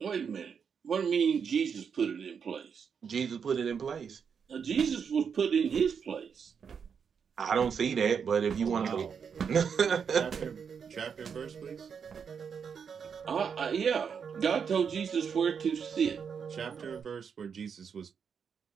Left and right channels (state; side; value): quieter; left; 6.7 dB